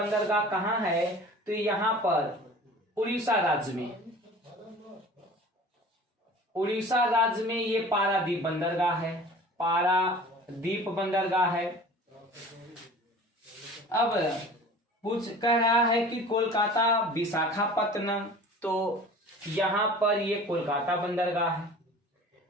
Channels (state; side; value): normal; both; correlation 0.42